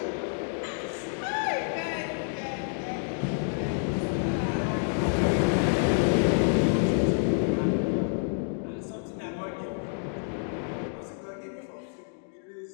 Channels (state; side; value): silent; right; 59 dB below the other